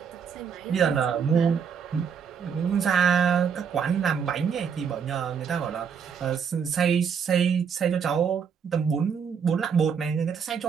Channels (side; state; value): left; quieter; 6.8 dB